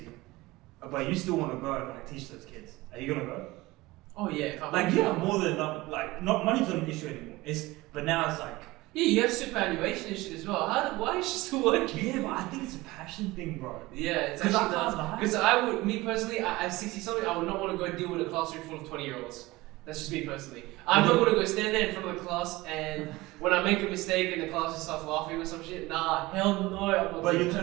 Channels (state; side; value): quieter; left; 20.2 dB